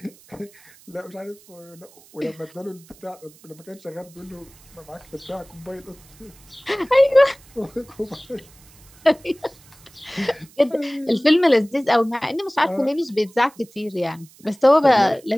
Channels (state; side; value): noise; right; hiss, 26 dB below the sound